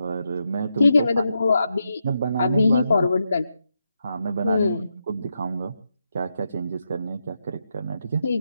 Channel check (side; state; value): both; inverted; correlation -0.84